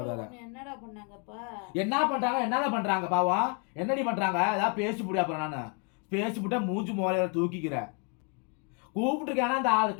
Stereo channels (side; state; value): right; quieter; 34.6 dB